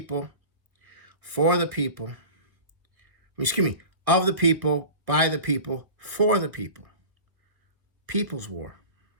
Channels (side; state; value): left; late; 1.5 ms